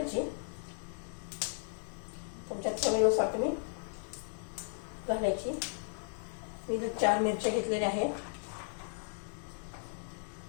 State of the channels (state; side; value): silent; right; digital silence